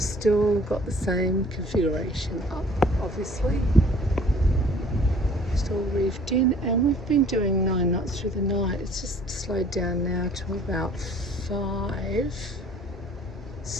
still got the same configuration up, obviously. Still reefed in, and we've been doing 9 knots through the night. It's just slowed down now to about 5,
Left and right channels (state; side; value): normal; both; correlation 0.54